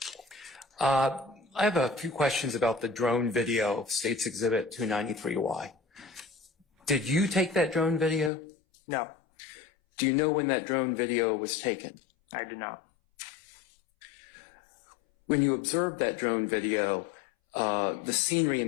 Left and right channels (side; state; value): right; drops out; at 8.3 s